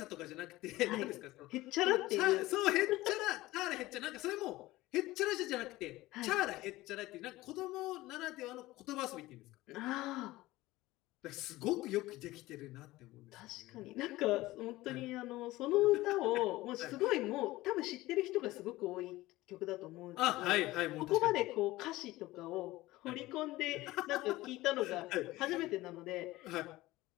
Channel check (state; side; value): quieter; right; 18.2 dB